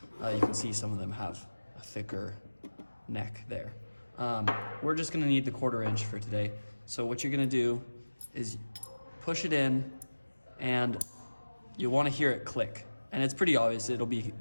You can see some of them have a thicker neck there. We're just gonna need the 1/4 inch for today. So what you're gonna do is push it in, and you'll wanna hear it click. And it's pretty obvious, it'll be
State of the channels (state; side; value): inverted; both; correlation -1.00